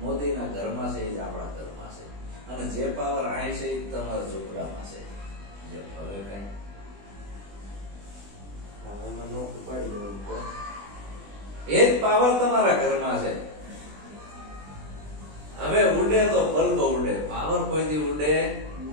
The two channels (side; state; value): left; late; 20 ms